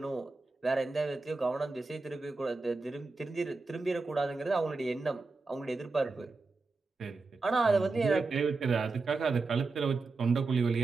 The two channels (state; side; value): quieter; left; 3.8 dB